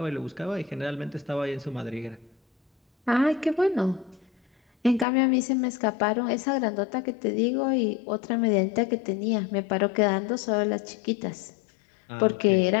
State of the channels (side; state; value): right; drops out; at 5.1 s